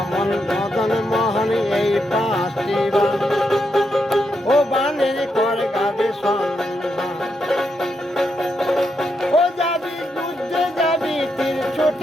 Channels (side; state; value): both; normal; correlation 0.82